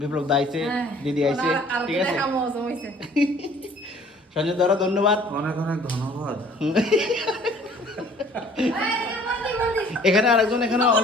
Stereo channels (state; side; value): normal; both; correlation 0.54